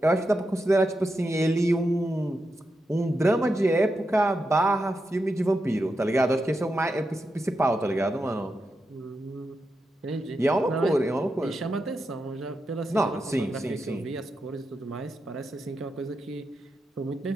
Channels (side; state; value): both; normal; correlation 0.87